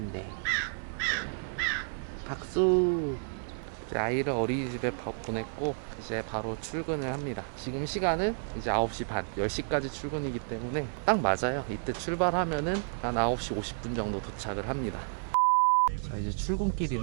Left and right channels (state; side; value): silent; left; 56 dB below the other